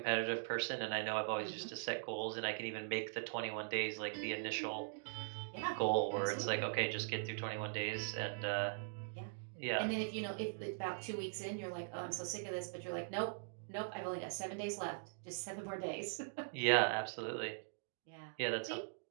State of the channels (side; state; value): left; silent; digital silence